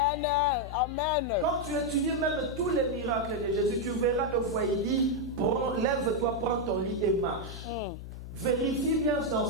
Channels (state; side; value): noise; left; hum, 11 dB below the sound